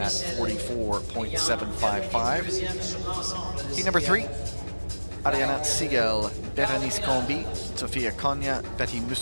44.755. Heat number 3, Ariana Siegel, Berenice Combi, Sofia Konya, Betty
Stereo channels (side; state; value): both; inverted; correlation -1.00